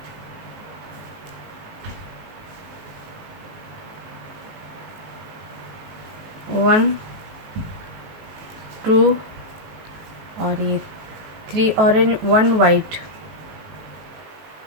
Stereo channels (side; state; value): left; late; 18 ms